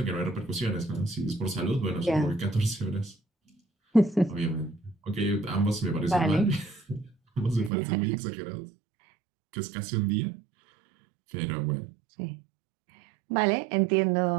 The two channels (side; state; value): left; drops out; at 7.7 s